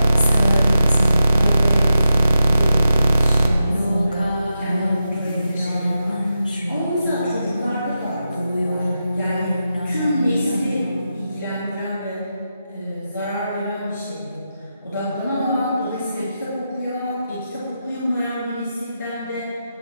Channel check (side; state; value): both; inverted; correlation -0.88